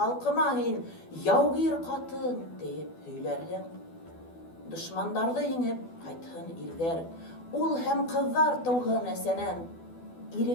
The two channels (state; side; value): late; right; 12 ms